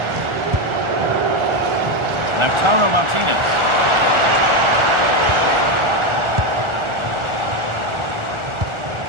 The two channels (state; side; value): late; left; 1.4 ms